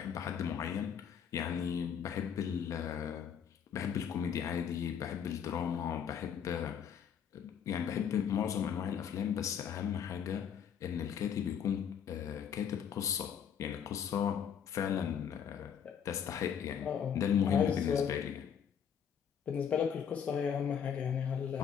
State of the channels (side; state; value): right; quieter; 8.0 dB